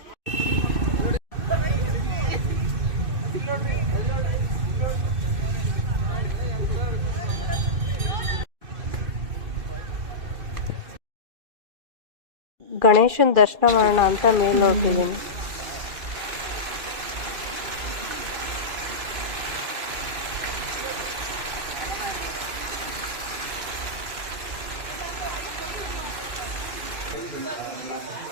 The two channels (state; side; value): late; left; 2.5 ms